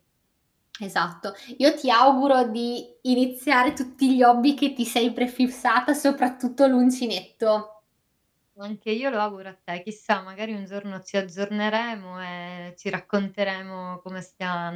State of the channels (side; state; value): both; identical; correlation 1.00